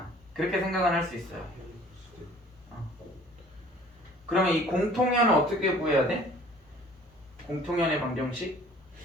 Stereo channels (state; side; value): normal; both; correlation 0.52